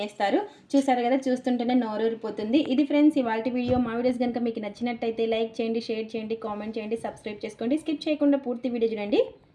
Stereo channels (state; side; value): identical; both; correlation 1.00